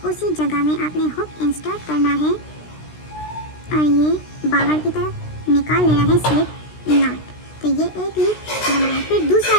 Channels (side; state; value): right; late; 16 ms